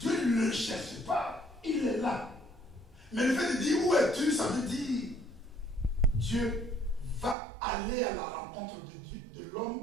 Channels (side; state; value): left; drops out; at 7.4 s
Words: ne le cherche pas, il est là. Mais le fait de dire où es-tu, ça veut dire Dieu va aller à la rencontre de